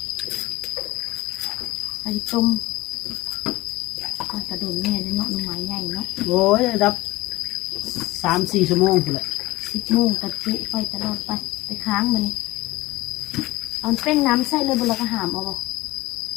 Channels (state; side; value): quieter; right; 19.4 dB